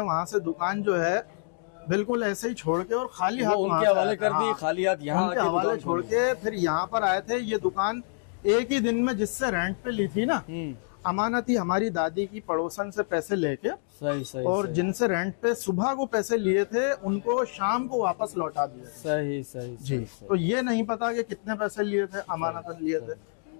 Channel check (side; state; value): right; silent; digital silence